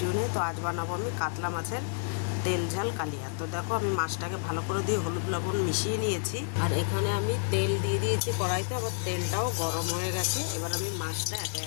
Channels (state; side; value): silent; right; 58 dB below the other